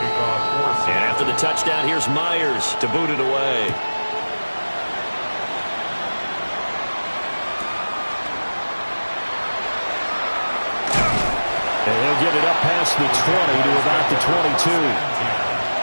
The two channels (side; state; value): both; inverted; correlation -1.00